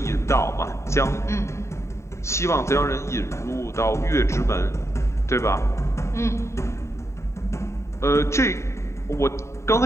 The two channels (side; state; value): right; late; 0.14 ms